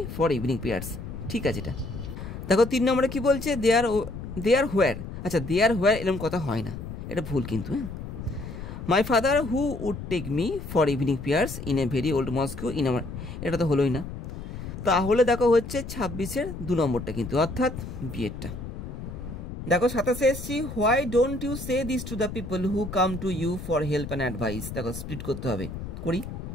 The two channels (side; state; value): left; noise; rumble, 9 dB below the sound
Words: for evening prayers, ঠিক আছে এটা। দেখো 3 নম্বরে কি বলছে, দেয়ার হোয়ার। আচ্ছা, দেয়ার হোয়ার এরকম কথা হয় না, এটা ভুল কিন্তু, হ্যাঁ। My father who would take me for evening prayers in a very old mosque in our, এটা তো হলোই না। তাহলে দেখো হচ্ছে 26-এর 2 নম্বরটা কিন্তু, অর্থাৎ বিয়েরটা। দেখো 27-এ এসছি, why don't you say this to the people who come to you for help and advice. দেখো স্প্লিট করতে হবে, করি।